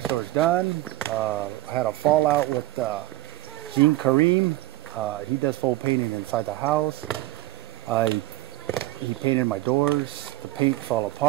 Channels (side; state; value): left; quieter; 16.8 dB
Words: doors done. I had a fallout with Gene Kareem. He does full painting inside the house. He painted my doors. The paint fell